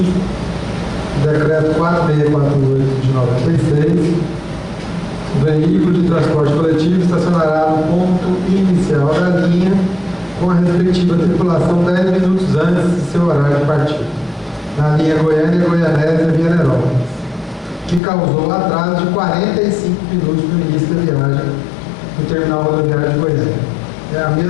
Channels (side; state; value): right; drops out; at 18.0 s